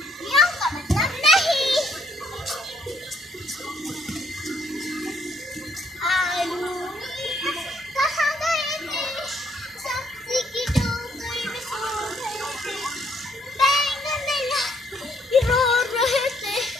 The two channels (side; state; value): both; normal; correlation 0.69